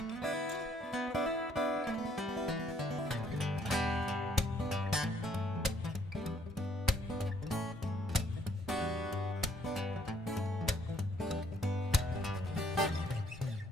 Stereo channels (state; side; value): normal; both; correlation 0.66